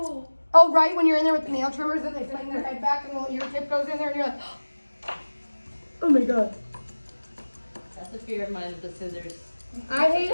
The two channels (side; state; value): both; inverted; correlation -1.00